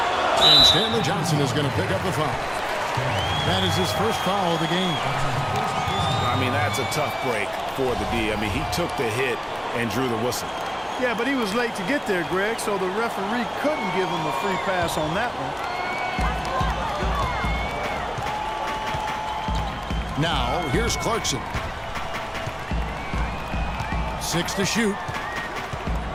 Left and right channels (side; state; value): both; identical; correlation 1.00